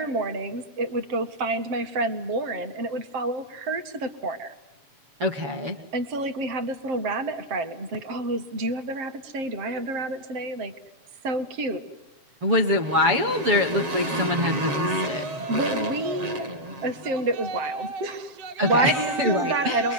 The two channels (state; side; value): late; left; 7.1 ms